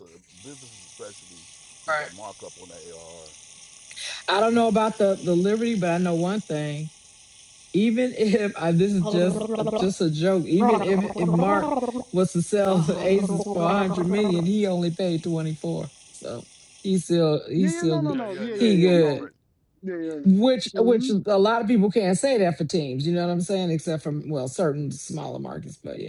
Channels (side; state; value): both; identical; correlation 1.00